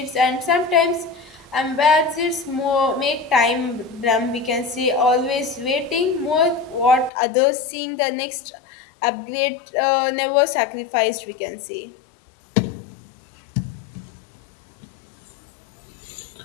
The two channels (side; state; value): right; drops out; at 7.1 s